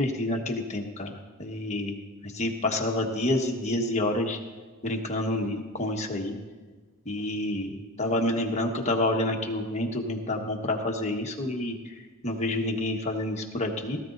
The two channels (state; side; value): normal; both; correlation 0.30